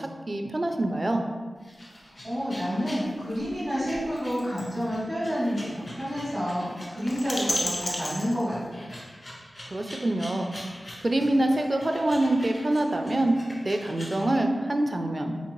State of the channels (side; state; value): both; normal; correlation 0.96